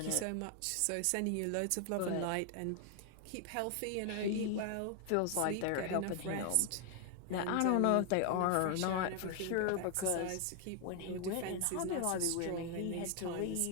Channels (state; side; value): different; both; correlation 0.00